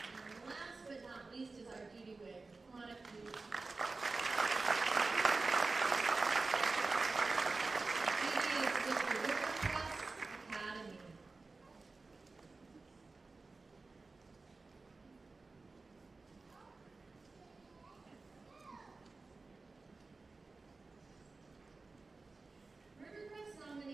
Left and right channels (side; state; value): left; quieter; 3.7 dB